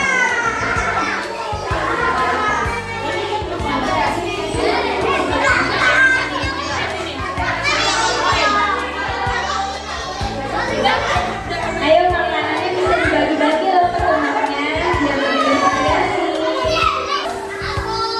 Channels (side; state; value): both; identical; correlation 1.00